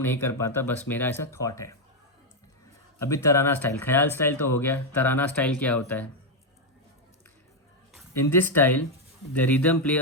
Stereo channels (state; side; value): normal; both; correlation 0.02